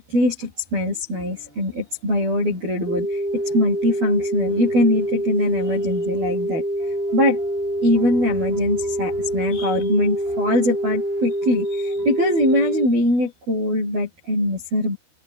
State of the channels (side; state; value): left; late; 12 ms